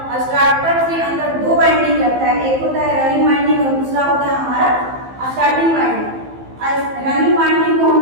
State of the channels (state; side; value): late; left; 15 ms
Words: स्टार्टर के अंदर दो वाइंडिंग रहता है। एक होता है रनिंग वाइंडिंग और दूसरा होता है हमारा स्टार्टिंग वाइंडिंग। रनिंग वाइंडिंग को हम